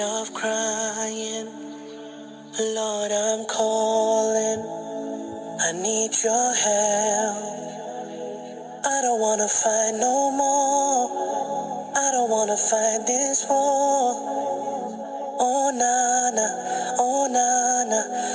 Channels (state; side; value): identical; both; correlation 1.00